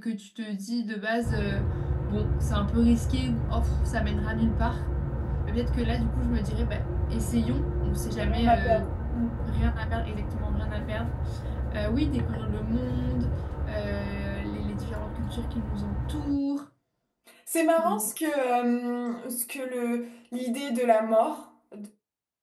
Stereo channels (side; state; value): both; identical; correlation 1.00